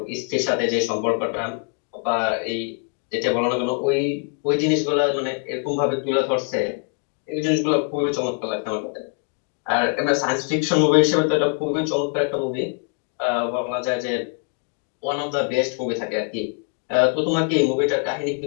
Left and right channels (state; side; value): quieter; right; 36.8 dB